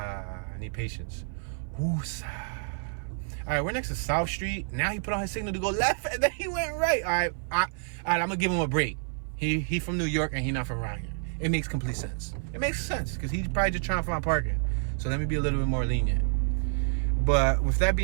I need patience. Woosah. All right, we're next to South Street. Now he put on his signal to go left, and then he went right. All right, I'm going to give him a break. He from New York, and he not from around here. It makes complete sense. It makes sense, because he's probably just trying to find parking. So let me be a little bit more lenient. But with that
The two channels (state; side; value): silent; left; 55 dB below the other